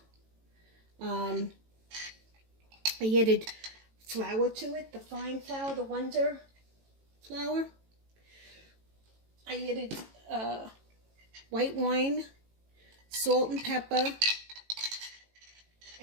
I added flour to it, the fine flour, the Wonder flour. I added white wine, salt and pepper,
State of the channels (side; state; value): left; late; 18 ms